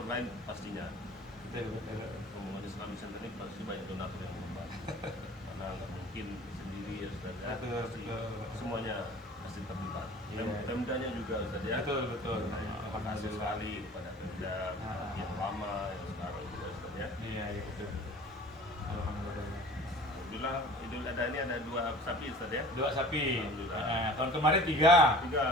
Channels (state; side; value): normal; both; correlation 0.44